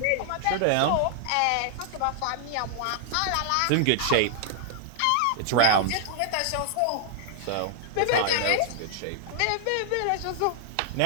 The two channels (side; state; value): both; different; correlation -0.01